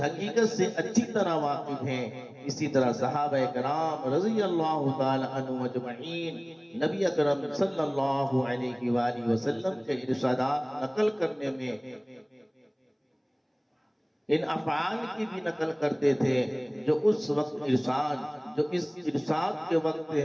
سے اچھی طرح واقف ہیں۔ اسی طرح صحابہ کرام رضی اللہ تعالی عنہ اجمعین نبی اکرم صلی اللہ علیہ وآلہ وسلم کے ارشادات نقل کرنے میں ان افعال کی بھی نقل کرتے تھے جو اس وقت جو اس ارشاد کے وقت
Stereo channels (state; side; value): identical; both; correlation 1.00